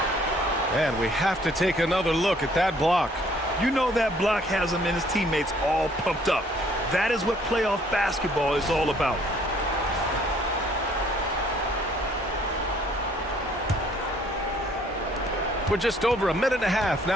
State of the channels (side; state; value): both; normal; correlation 0.61